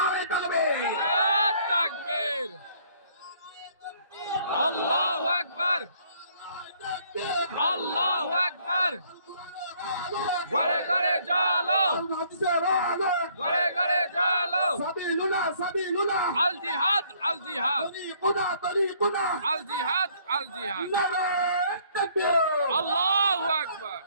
তাকবীর, তাকবীর, আল্লাহু আকবার, আল্লাহু আকবার। ঘরে ঘরে চলো, ঘরে ঘরে চলো। সাবিলুনা সাবিলুনা, আল জিহাদ, আল জিহাদ, তরিকুনা তরিকুনা, আল জিহাদ, আল জিহাদ। নারে তাকবীর, আল্লাহু আকবার।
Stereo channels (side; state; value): both; inverted; correlation -0.63